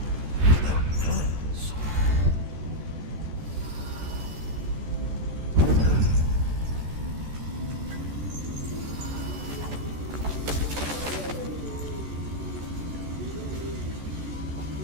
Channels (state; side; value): late; left; 14 ms